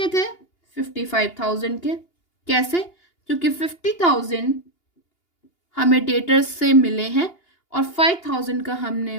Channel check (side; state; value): right; late; 2.8 ms